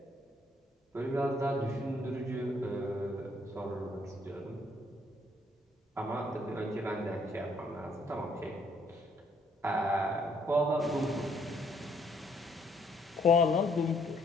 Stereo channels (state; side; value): normal; both; correlation 0.67